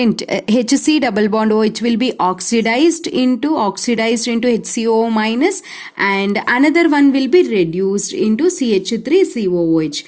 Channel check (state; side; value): identical; both; correlation 1.00